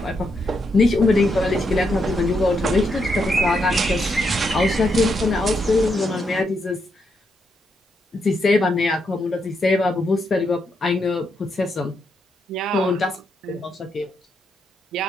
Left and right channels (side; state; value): both; normal; correlation 0.80